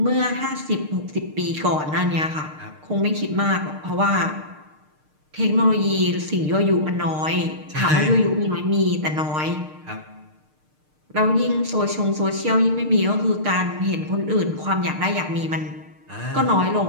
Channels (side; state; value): left; late; 6.6 ms